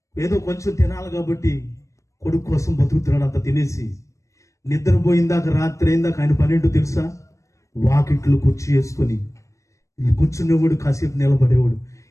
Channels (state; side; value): late; right; 0.15 ms